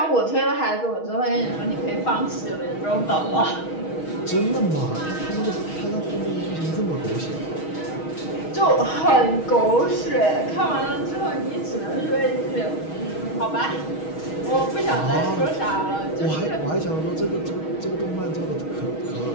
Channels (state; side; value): late; right; 6.3 ms